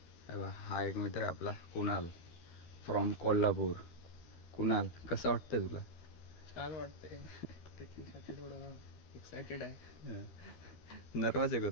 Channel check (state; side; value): late; right; 13 ms